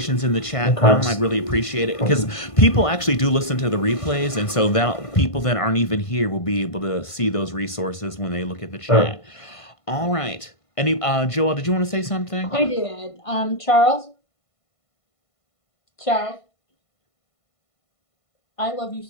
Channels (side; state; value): right; late; 1.5 ms